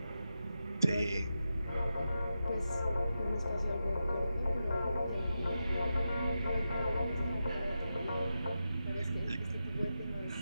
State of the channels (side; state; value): both; inverted; correlation -0.89